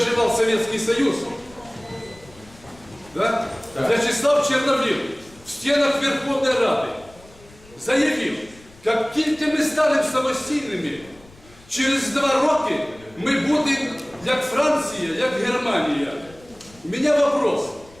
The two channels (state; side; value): noise; left; rumble, 25 dB below the sound